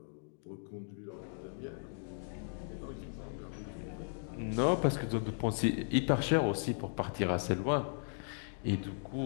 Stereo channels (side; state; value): right; silent; digital silence